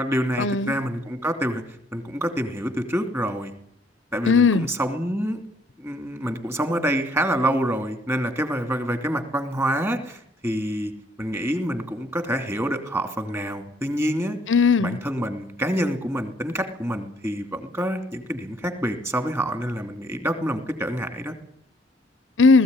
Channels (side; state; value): both; normal; correlation 0.64